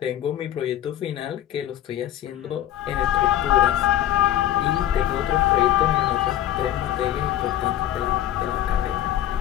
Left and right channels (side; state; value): right; quieter; 12.1 dB